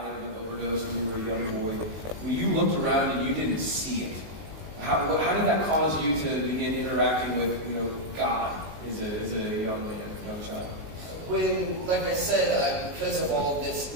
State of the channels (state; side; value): late; left; 18 ms